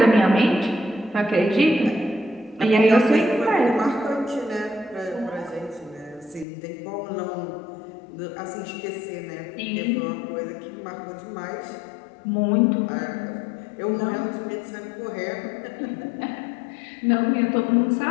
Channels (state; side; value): drops out; right; at 6.5 s